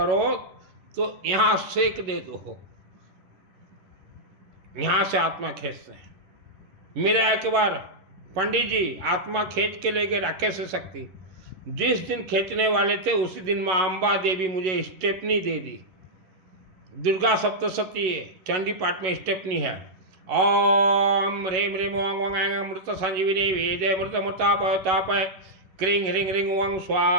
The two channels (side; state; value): left; late; 11 ms